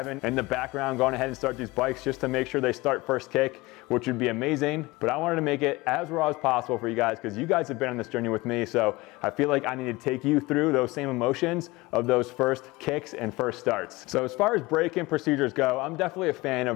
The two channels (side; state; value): right; quieter; 21.6 dB